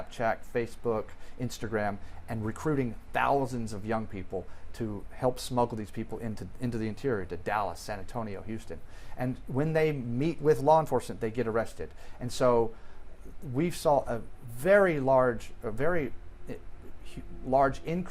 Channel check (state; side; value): identical; both; correlation 1.00